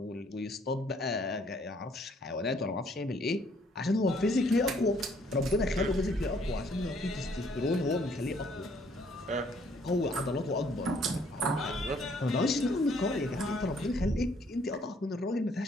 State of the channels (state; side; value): normal; both; correlation 0.64